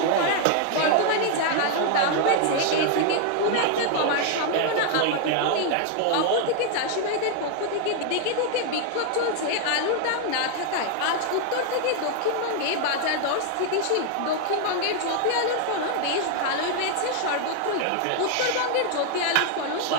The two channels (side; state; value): both; different; correlation 0.00